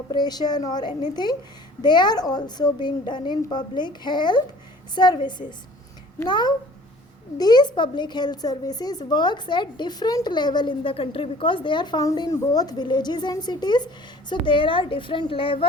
or anything, they are also being done in public health services. Now these public health services works at different level in the country, because they are found in both villages and cities. So there are different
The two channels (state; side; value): normal; both; correlation 0.50